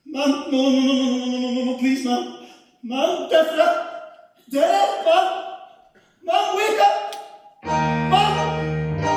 Man, no, please, man. Man, death, man. Man, wake up. Man.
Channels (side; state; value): both; identical; correlation 1.00